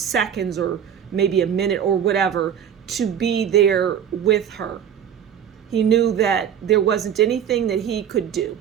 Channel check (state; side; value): quieter; left; 8.8 dB